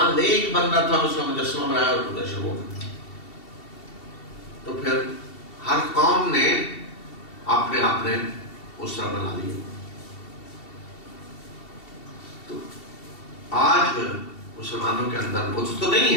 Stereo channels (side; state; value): right; late; 2.7 ms